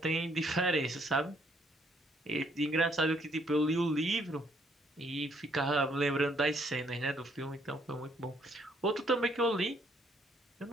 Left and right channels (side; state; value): both; normal; correlation 0.67